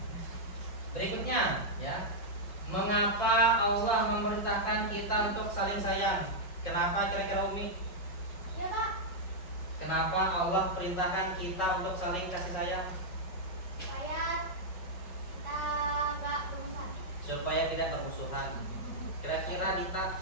Berikutnya, ya. Mengapa Allah memerintahkan kita untuk saling sayang? Kenapa kira-kira Umi? Ya Pak, Kenapa Allah perintahkan kita untuk saling kasih sayang? supaya kita nggak bermusuhan. Supaya tidak bermusuhan. Kira-kira Dita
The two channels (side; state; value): right; late; 5.4 ms